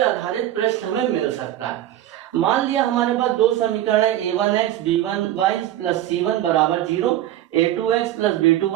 आधारित प्रश्न हमें मिल सकता है। मान लिया हमारे पास दो समीकरण है, a1x b1y प्लस c1 बराबर 0, a2x plus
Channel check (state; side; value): quieter; left; 13.1 dB